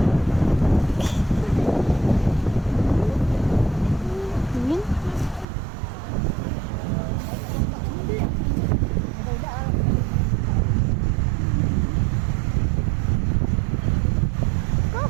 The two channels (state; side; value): drops out; left; at 5.5 s